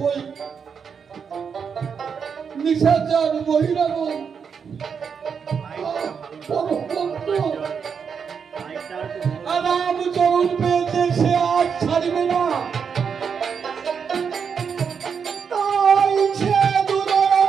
ওই নিশাচার মহিলাগণ রামচরণ পেয়েছে, সে আজ ছাড়বে না। তাই সে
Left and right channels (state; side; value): quieter; left; 6.5 dB